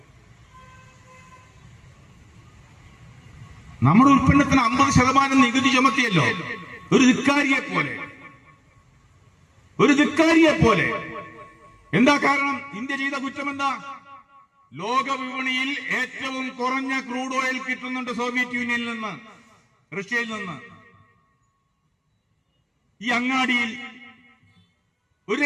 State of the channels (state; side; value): identical; both; correlation 1.00